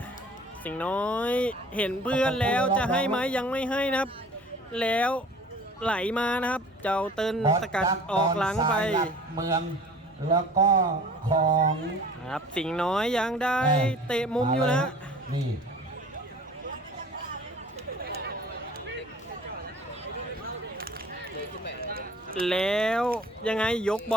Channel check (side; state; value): both; normal; correlation 0.47